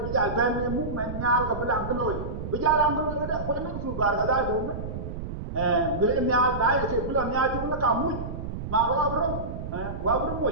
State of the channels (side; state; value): right; noise; rumble, 7 dB below the sound